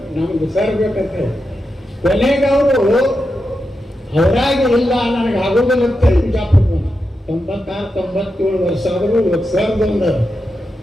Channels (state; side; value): normal; both; correlation 0.88